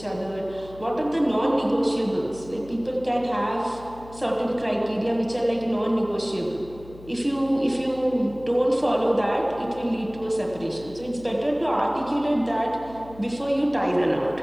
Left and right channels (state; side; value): noise; left; hum, 19 dB below the sound